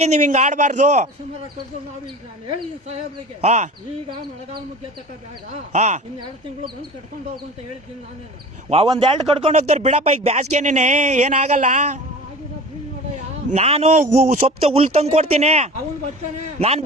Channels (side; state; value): both; normal; correlation 0.38